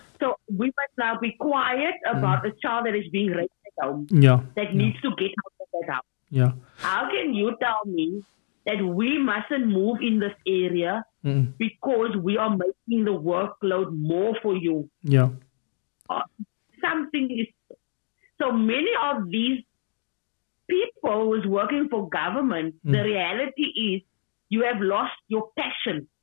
So we must now be quiet about a child that is being raised at home, that needs to get out of that house. Yeah. How can you tell me that we mustn't move in this area because we are making the workload more for you? Yeah. something is. So many of these people who's working for government, the reality is you have lost your passion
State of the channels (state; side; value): silent; right; 61 dB below the other